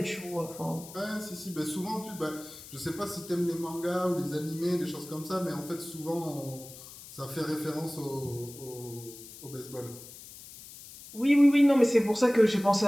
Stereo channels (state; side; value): noise; left; hiss, 16 dB below the sound